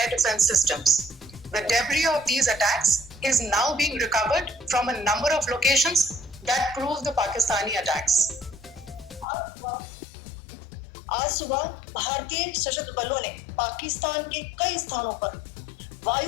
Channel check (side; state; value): right; drops out; at 9.2 s